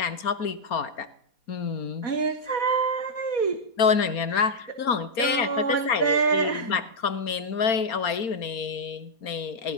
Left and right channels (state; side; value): late; right; 4.4 ms